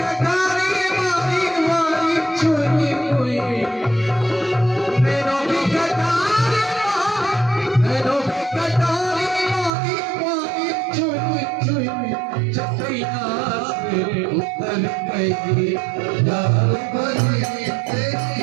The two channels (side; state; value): left; drops out; at 9.7 s